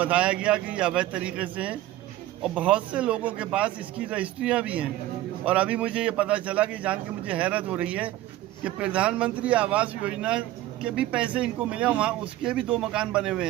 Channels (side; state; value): left; quieter; 15.1 dB